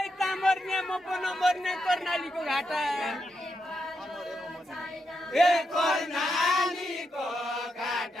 मर्ने म पनि मर्ने कर्णालीको घाटा कर्णालीको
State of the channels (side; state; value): both; normal; correlation 0.84